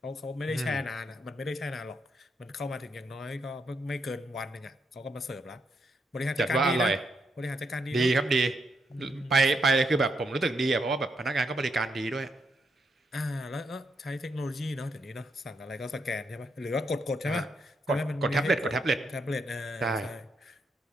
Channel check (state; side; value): normal; both; correlation 0.79